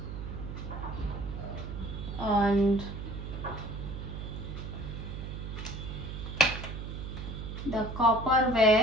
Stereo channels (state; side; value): noise; right; hum, 7 dB below the sound